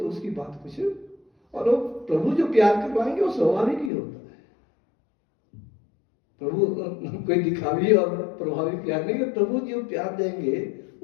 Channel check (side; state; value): right; drops out; at 3.9 s